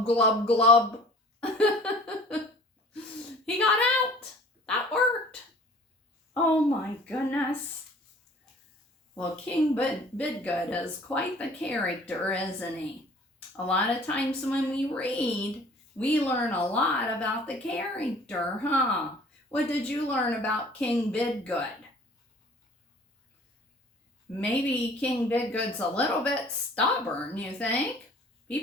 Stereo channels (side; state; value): both; normal; correlation 0.50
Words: glub, glub. He got out. That worked. Oh my goodness. Well, King Bidgood is quite the character, isn't he? A lot of times when we read, we learn a lot about the character, huh? What did you learn about King Bidgood? Maybe King Bidgood's a little bit stubborn, you think?